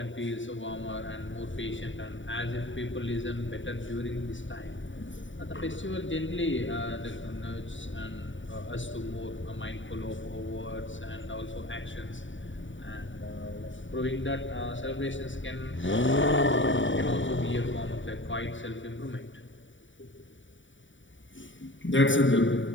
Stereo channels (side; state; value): right; late; 0.55 ms